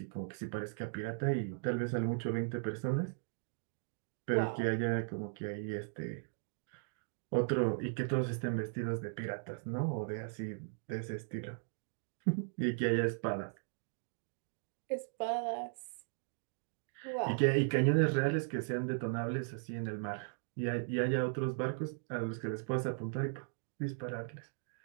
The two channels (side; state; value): left; silent; digital silence